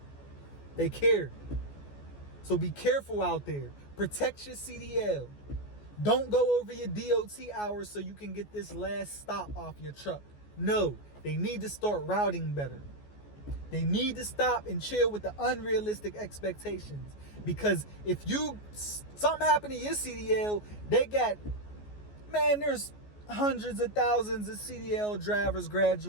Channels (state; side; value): late; right; 14 ms